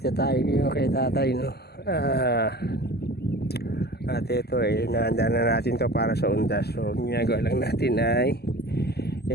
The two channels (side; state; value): right; late; 0.47 ms